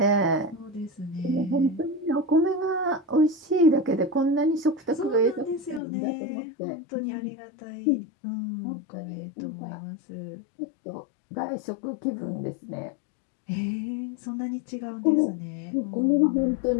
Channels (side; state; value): right; drops out; at 5.8 s